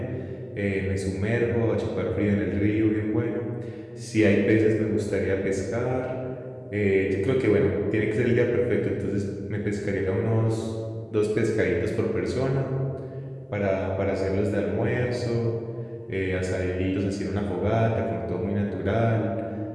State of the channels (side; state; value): both; identical; correlation 1.00